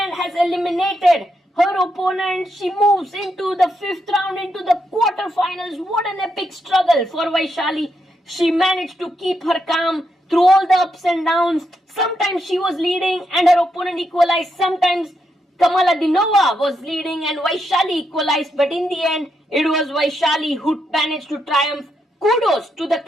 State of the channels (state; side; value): normal; both; correlation 0.81